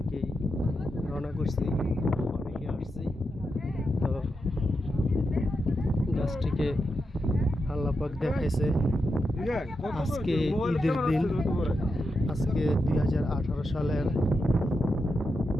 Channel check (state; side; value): normal; both; correlation 0.87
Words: রওনা করছি, অনেকে আসছি। তো গাছটিকে আল্লাহ পাক দেখাইছে আজকে ঈদের দিন, আজকে 2018 সালের